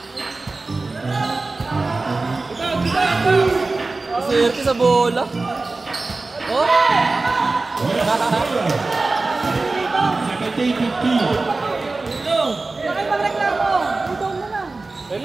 Swerte sa bola. Oh! Second team 15. Bakit magreklamo? Udong mo lang.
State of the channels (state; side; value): quieter; left; 3.5 dB